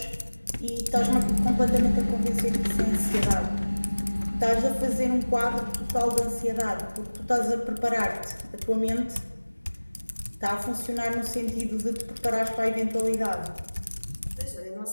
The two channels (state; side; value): inverted; both; correlation -1.00